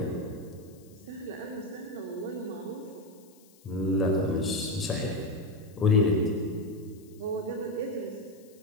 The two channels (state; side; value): noise; left; hiss, 27 dB below the sound